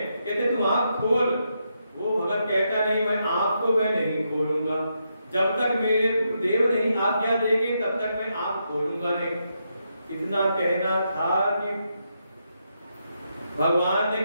कहते तुम आंख खोल। वो भगत कहता नहीं, मैं आंख को मैं नहीं खोलूंगा, जब तक मेरे गुरुदेव नहीं आज्ञा देंगे तब तक मैं आंख खोलूंगा नहीं। इतना कहना था कि भगवान ने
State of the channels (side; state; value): both; inverted; correlation -0.82